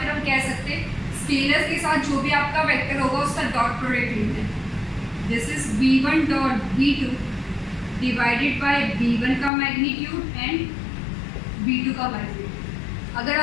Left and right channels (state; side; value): drops out; right; at 9.5 s